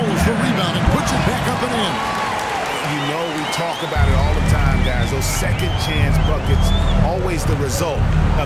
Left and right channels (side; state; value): both; identical; correlation 1.00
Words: the rebound and puts it back up and in. You know we talk about it all the time, guys. Those second chance buckets, always the result